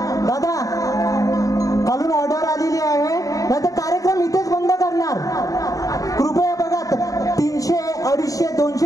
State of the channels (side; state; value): right; late; 0.17 ms